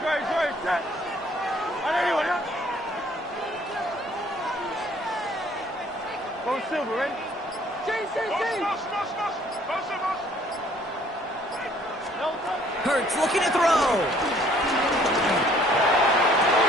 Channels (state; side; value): normal; both; correlation 0.59